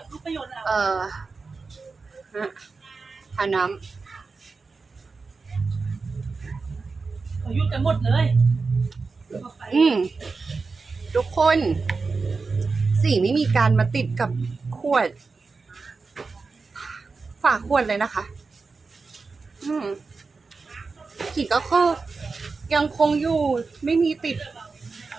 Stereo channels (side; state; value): left; quieter; 4.3 dB